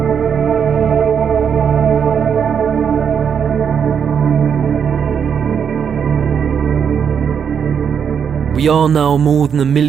We are now more than 1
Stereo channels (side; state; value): left; quieter; 7.4 dB